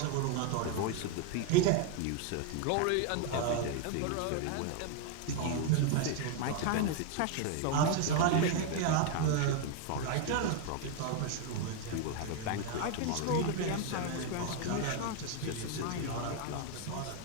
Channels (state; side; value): different; both; correlation 0.01